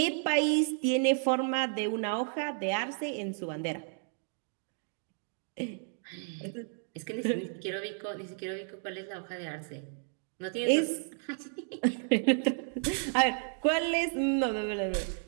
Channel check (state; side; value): silent; left; 56 dB below the other